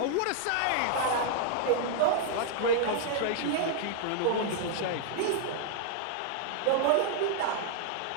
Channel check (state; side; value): different; both; correlation 0.00